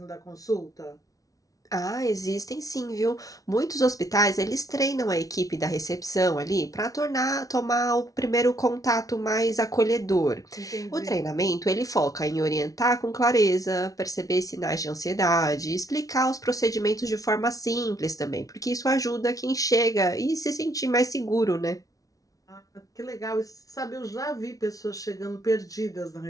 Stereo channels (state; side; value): late; right; 0.17 ms